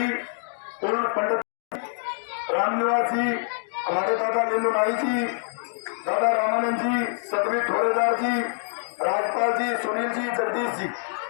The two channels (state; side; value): silent; right; digital silence